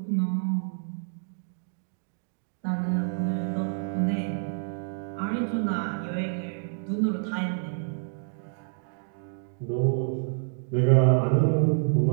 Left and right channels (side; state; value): left; silent; digital silence